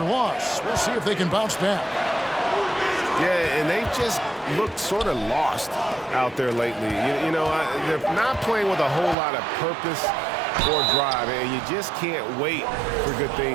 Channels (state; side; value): drops out; left; at 9.2 s